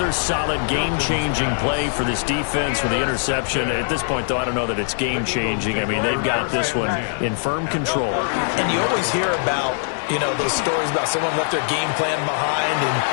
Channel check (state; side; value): silent; right; digital silence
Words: solid game-changing play for this defense with the interception. At this point, though, I don't know that it's game-changing. I mean, they've got this one in firm control. And you always hear about, you know, those stories about someone left their game plan behind and